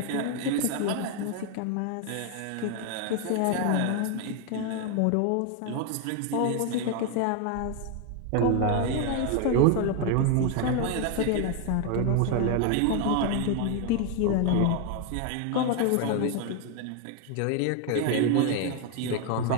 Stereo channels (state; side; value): different; both; correlation 0.01